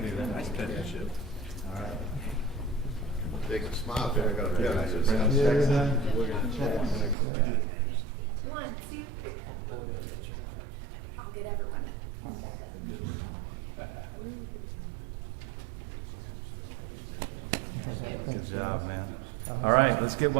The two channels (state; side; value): drops out; left; at 7.2 s